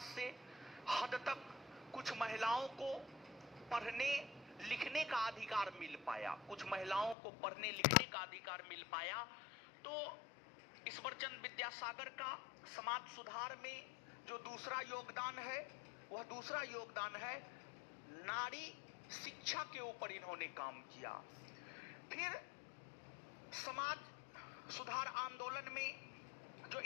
से हद तक कुछ महिलाओं को पढ़ने लिखने का अधिकार मिल पाया, कुछ महिलाओं को पढ़ने लिखने का अधिकार मिल पाया। तो ईश्वरचंद विद्यासागर का समाज सुधार में जो दूसरा योगदान है, वह दूसरा योगदान है नारी शिक्षा के ऊपर इन्होंने काम किया। फिर समाज सुधार आंदोलन में जो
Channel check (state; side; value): drops out; right; at 7.2 s